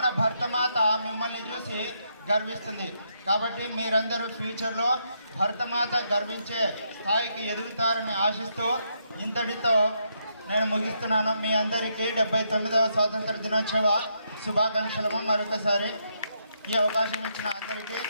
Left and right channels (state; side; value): inverted; both; correlation -0.78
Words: భరతమాత మిమ్మల్ని చూసి గర్విస్తుంది. కాబట్టి మీరందరూ ఫ్యూచర్లో భరతమాత గర్వించే స్థాయికి ఎదుగుతారని ఆశిస్తూ ఇంతటితో నేను ముగిస్తున్నాను. మీ అందరికీ 79వ స్వాతంత్ర దినోత్సవ శుభాకాంక్షలు. మరొకసారి ఈ అవకాశం ఇచ్చిన అందరికీ